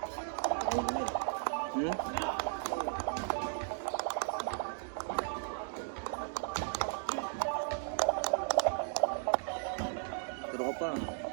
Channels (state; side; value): silent; left; digital silence